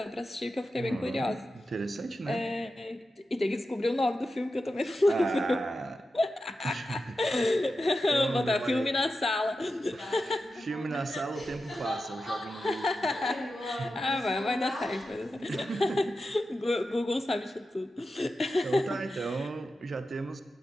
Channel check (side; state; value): both; normal; correlation 0.91